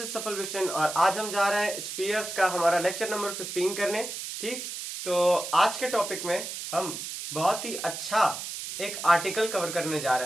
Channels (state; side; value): noise; right; hiss, 7 dB below the sound